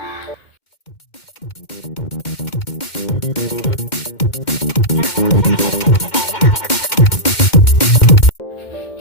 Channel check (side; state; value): right; late; 2.1 ms